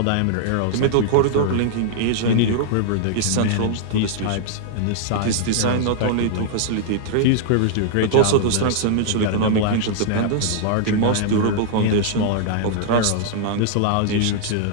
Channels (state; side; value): different; both; correlation -0.01